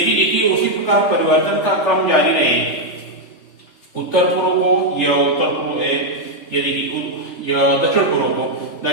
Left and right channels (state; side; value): late; right; 3.4 ms